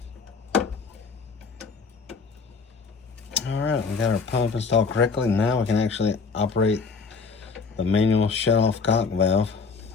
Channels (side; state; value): right; quieter; 4.9 dB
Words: alright, we got our pump installed correctly. Now we can actually operate the manual shut-off cock valve